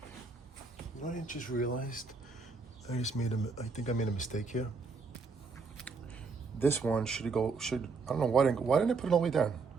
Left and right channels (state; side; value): quieter; left; 4.5 dB